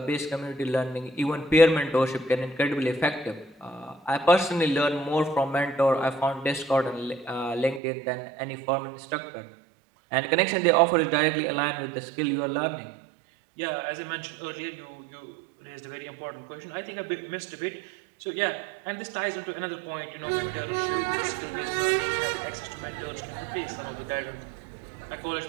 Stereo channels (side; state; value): left; drops out; at 7.8 s